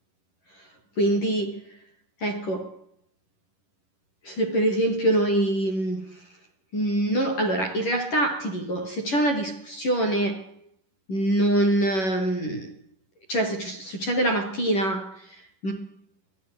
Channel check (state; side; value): late; right; 11 ms